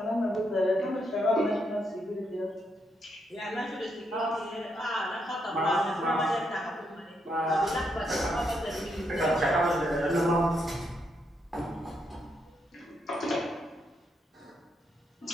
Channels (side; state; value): both; normal; correlation 0.78